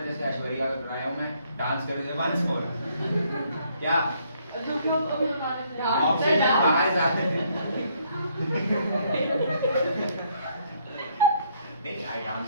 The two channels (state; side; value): inverted; both; correlation -0.68